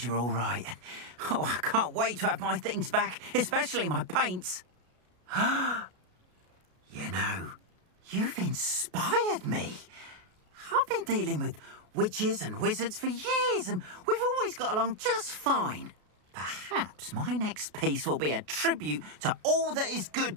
you're all right. Oh, I can't wait to have my things back, especially my paints. You know, you've inspired me. I've been dealing with witches and wizards for years, and we've always got along just fine. Perhaps my next piece will be a tribute to all that is good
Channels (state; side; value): late; left; 33 ms